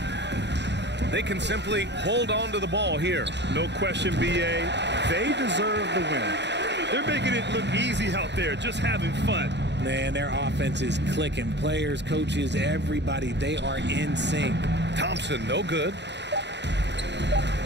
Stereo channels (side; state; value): left; late; 0.51 ms